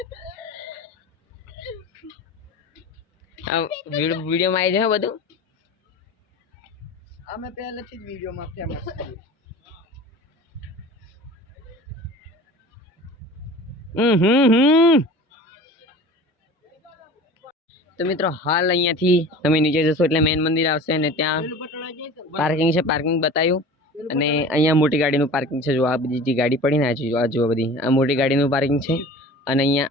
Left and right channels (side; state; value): both; normal; correlation 0.39